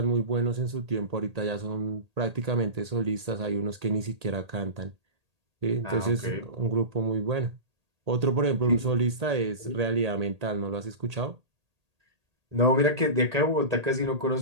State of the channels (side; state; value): left; late; 1.8 ms